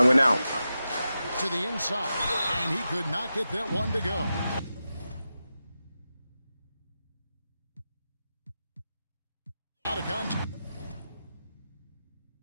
win out. To the inside, and he could not get that one to go. Out of contact.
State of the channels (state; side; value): inverted; both; correlation -0.91